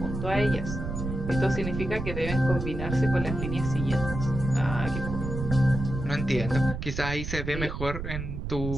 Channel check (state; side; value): noise; right; rumble, 5 dB below the sound